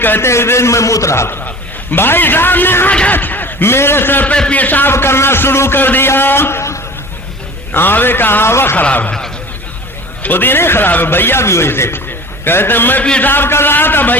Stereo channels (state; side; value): normal; both; correlation 0.40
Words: ہیں ایک دن میں موت رہا تھا. بھائی صاحب نے آ کر میرے سر پہ پیشاب کرنا شروع کر دیا. آوے کا آوا خراب ہے، خود ہی نہیں خراب ہے، بھیا بھی وہی سے. کہتے ہیں میں پیشاب کر رہا تھا،